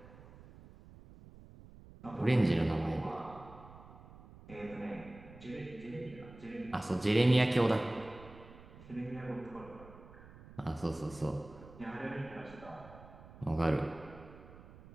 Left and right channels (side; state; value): right; noise; rumble, 19 dB below the sound